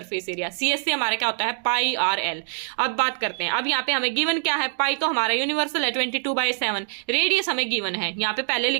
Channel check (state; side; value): silent; left; digital silence